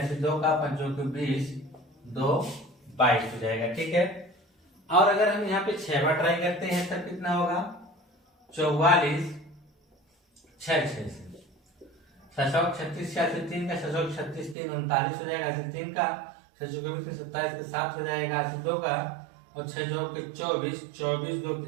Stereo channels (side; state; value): left; drops out; at 14.6 s